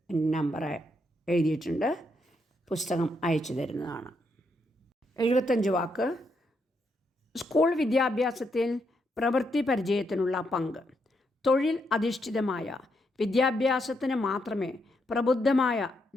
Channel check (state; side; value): normal; both; correlation 0.79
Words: നമ്പർ എഴുതിയിട്ടുണ്ട്. പുസ്തകം അയച്ചു തരുന്നതാണ്. 75 വാക്ക്. സ്കൂൾ വിദ്യാഭ്യാസത്തിൽ പ്രവൃത്തി പരിചയത്തിനുള്ള പങ്ക്. തൊഴിൽ അധിഷ്ഠിതമായ വിദ്യാഭ്യാസത്തിന് മാത്രമേ പ്രബുദ്ധമായ